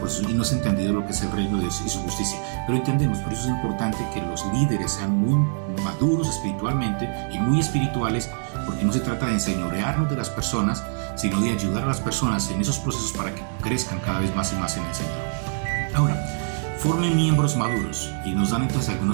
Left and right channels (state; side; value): silent; left; digital silence